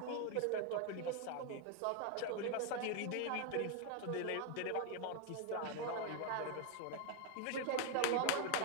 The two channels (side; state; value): both; different; correlation 0.01